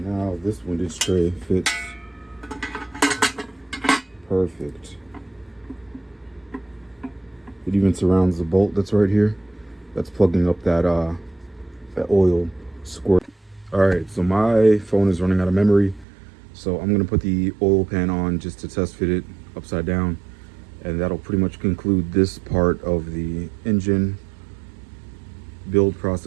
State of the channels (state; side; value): drops out; left; at 16.1 s